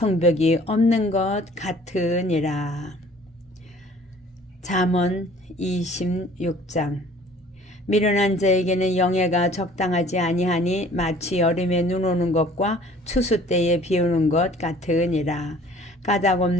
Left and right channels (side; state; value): both; normal; correlation 0.52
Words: 없는 것 같으니라. 잠언 26장. 미련한 자에게는 영예가 적당하지 아니하니 마치 여름에 눈 오는 것과 추수 때에 비 오는 것 같으니라. 까닭